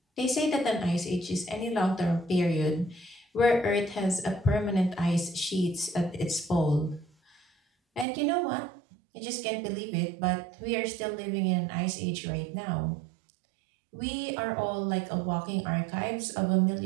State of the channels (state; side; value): drops out; left; at 8.1 s